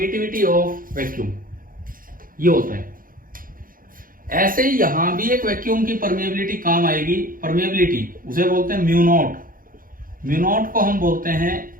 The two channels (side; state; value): left; late; 0.41 ms